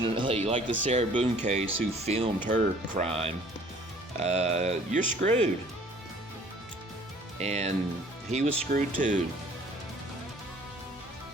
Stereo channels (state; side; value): normal; both; correlation 0.54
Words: like the Sarah Boone case, who filmed her crime, you're screwed. And he was screwed too.